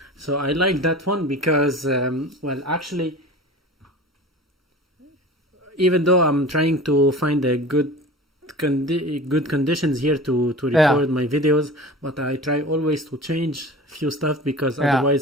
So I like that one because well, actually, even though I'm trying to find a good conditions here to record my videos, but I try always to change few stuff because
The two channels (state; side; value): normal; both; correlation 0.37